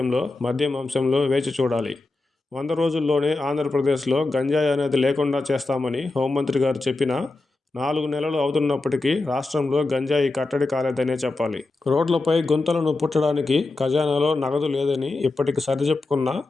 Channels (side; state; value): right; quieter; 3.3 dB